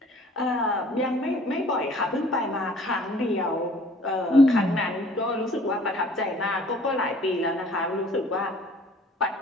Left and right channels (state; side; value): normal; both; correlation 0.53